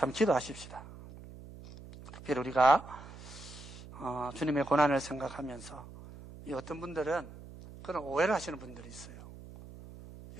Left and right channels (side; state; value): right; noise; hum, 16 dB below the sound